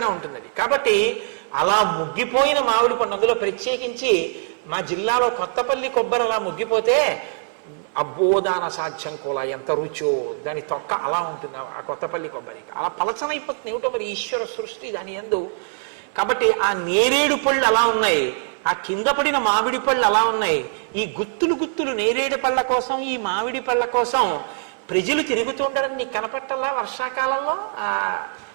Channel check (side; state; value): left; silent; 60 dB below the other